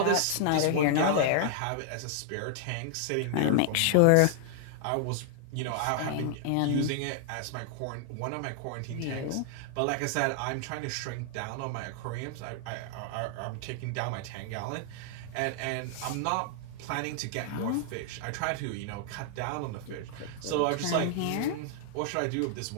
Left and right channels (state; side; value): different; both; correlation 0.00